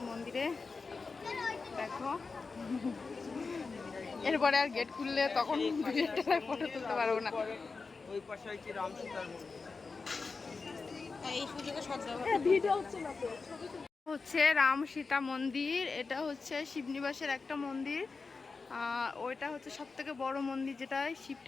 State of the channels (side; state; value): right; quieter; 4.4 dB